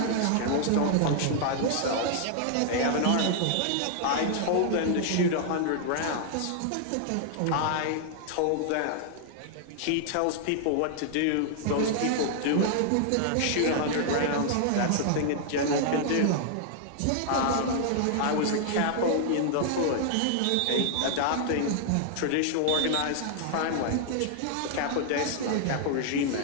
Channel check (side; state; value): both; different; correlation 0.00